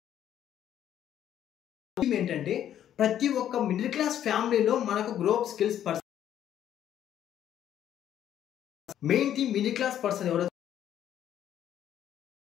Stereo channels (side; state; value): right; quieter; 10.7 dB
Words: ఏంటంటే ప్రతి ఒక్క మిడిల్ క్లాస్ ఫ్యామిలీలో మనకు group skills person main thing middle class person ఎవరైతే